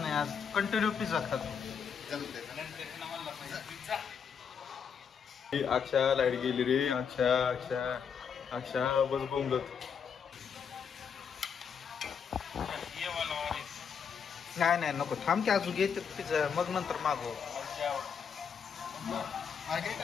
नाही. आज कंटिन्यू पिझ्झा खातो. अक्षा लाईट गेली रे. अक्षा अक्षा अक्षा बस बोंबलत. नाही नाही नको. थांब की अजून घेते पिझ्झा मग नंतर मागव. अरे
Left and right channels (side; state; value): right; quieter; 6.9 dB